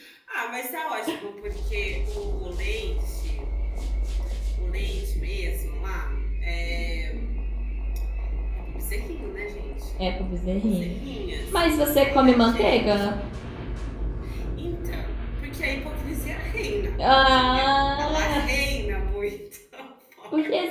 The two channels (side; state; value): both; identical; correlation 1.00